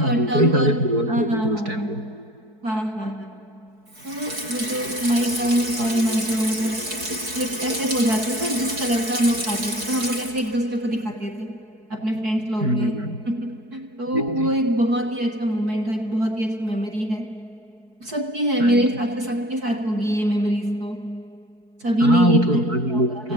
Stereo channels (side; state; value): left; late; 4.6 ms